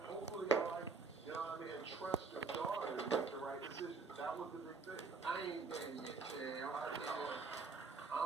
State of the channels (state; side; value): quieter; left; 4.7 dB